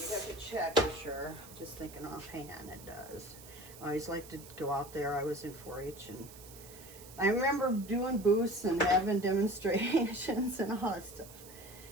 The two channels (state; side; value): noise; right; hiss, 18 dB below the sound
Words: you have to check for sure. Just thinking offhand, it does. I always like to go out there. I was in 4-H, and I remember doing booths and having demonstrations and all that stuff.